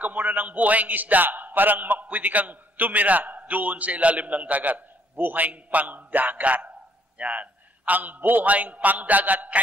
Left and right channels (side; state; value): both; normal; correlation 0.66